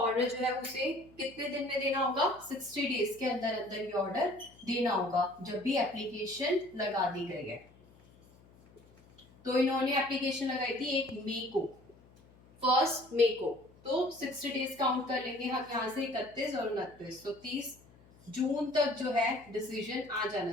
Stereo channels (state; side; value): noise; left; hum, 26 dB below the sound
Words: जो है उसे कितने दिन में देना होगा? 60 डेज के अंदर अंदर ये ऑर्डर देना होगा, जब भी एप्लीकेशन लगा दी गई है। तो इन्होंने एप्लीकेशन लगाई थी 1 मई को, 1 मई को, तो 60 डेज काउंट कर लेंगे हम यहाँ से 31 और 29, तो 30 जून तक जो है डिसीजन आ जाना